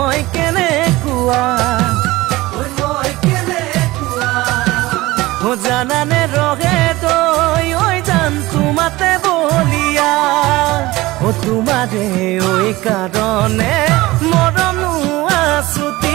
কেনেকুৱা জানানে ৰহে তই জান তোমাতে বলিয়া তোমাৰে কাৰণে মৰম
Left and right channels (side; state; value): left; quieter; 19.4 dB